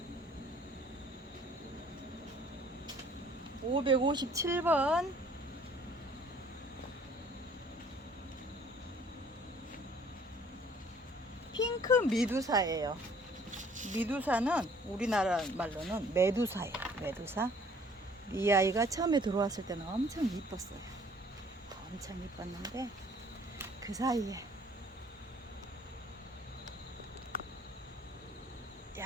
(557번) 핑크 미두사예요. 미두사는 우리나라 말로는 메두사예요. 메두사. 이 아이가 처음에 들어왔을 때는 엄청 이뻤어요. 엄청 이뻤는데 그 사이에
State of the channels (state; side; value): normal; both; correlation 0.56